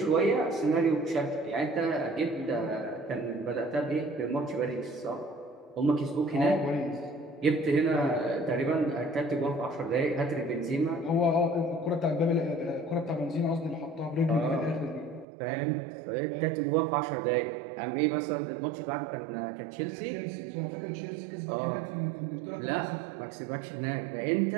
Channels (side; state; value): left; drops out; at 15.2 s